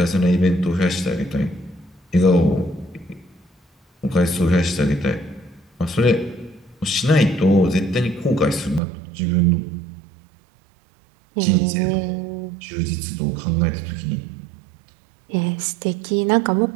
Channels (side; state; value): left; drops out; at 8.8 s